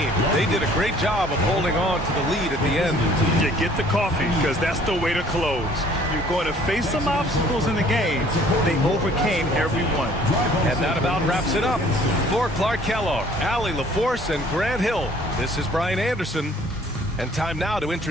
They did a great job of holding on to the lead at the end. You get the coffee because that's the way to close. You're going to face some obstacles in the game. They overcame every one. And that about wraps it up. For Clark Kellogg, Allie LaForce, and Grant Hill, this is Brian Anderson. And time now to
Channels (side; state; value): both; normal; correlation 0.56